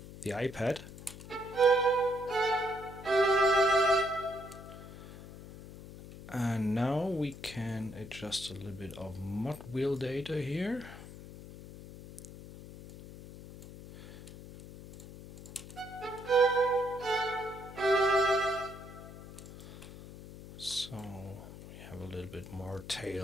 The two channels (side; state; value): left; noise; hum, 14 dB below the sound